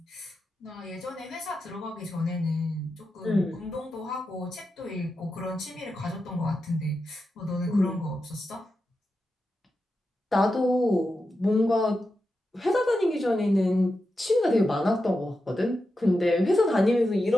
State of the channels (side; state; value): both; normal; correlation 0.89